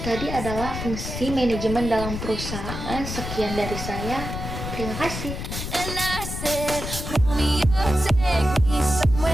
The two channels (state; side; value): noise; left; rumble, 6 dB below the sound